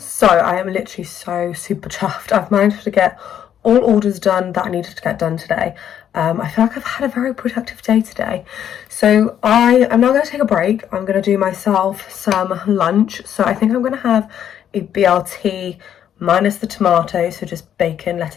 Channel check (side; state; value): right; quieter; 9.7 dB